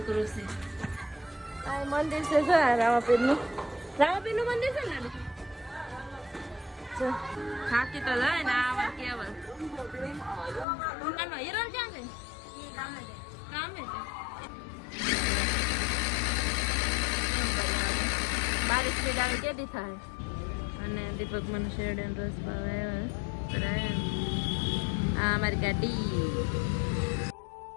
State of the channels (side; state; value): right; drops out; at 10.7 s